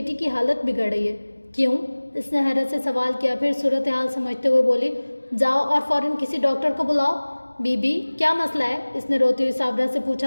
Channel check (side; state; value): both; inverted; correlation -1.00